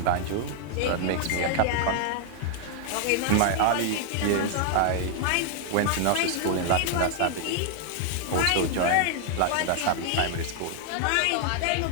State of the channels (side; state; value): both; different; correlation 0.00